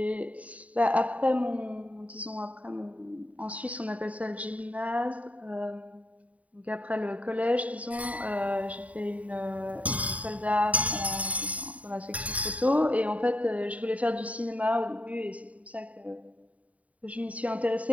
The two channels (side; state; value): left; late; 0.068 ms